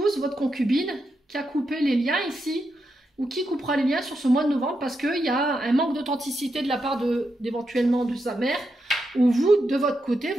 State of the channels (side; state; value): both; normal; correlation 0.85